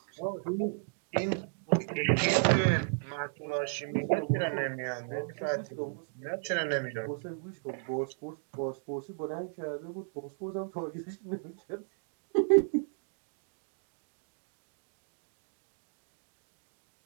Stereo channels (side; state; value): left; silent; digital silence